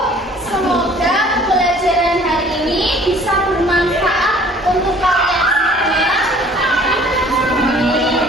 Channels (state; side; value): normal; both; correlation 0.53